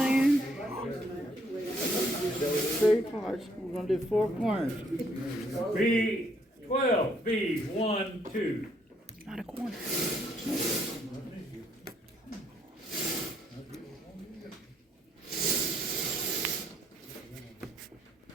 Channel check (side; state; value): both; normal; correlation 0.68